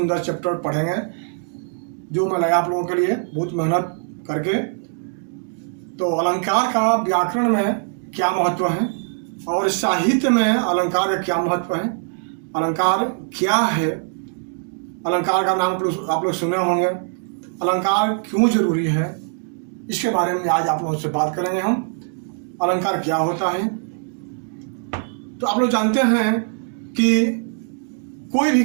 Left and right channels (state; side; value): silent; left; 58 dB below the other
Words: चैप्टर पढ़ेंगे जो मैं लाया आप लोगों के लिए बहुत मेहनत करके। तो अलंकार का व्याकरण में क्या महत्व है और साहित्य में अलंकार का क्या महत्व है, अलंकार क्या है, अलंकार का नाम आप लोग सुने होंगे, अलंकार क्यों जरूरी है, इसके बारे में आज आप लोगों से बात करेंगे हम। अलंकार क्या होता है। तो आप लोग जानते हैं कि कोई भी